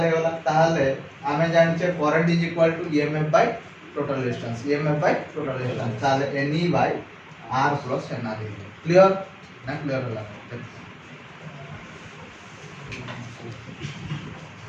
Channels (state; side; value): identical; both; correlation 1.00